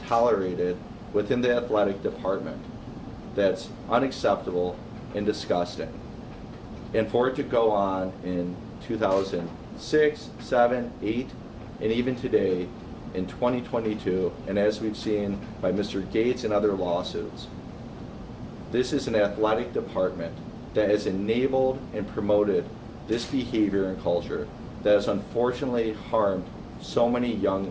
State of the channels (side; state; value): both; identical; correlation 1.00